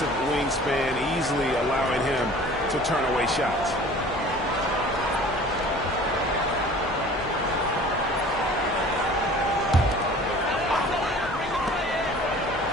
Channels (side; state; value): both; normal; correlation 0.46